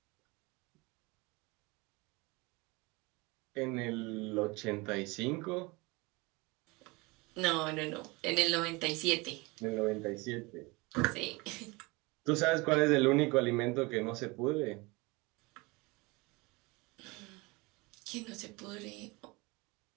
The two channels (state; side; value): quieter; left; 25.3 dB